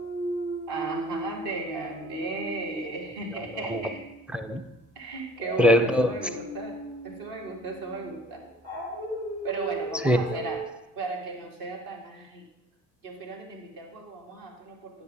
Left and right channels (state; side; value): normal; both; correlation 0.51